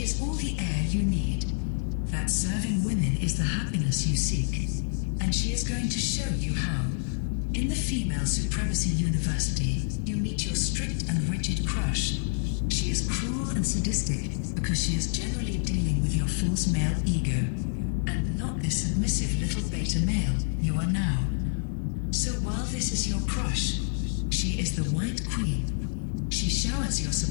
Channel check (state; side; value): silent; right; digital silence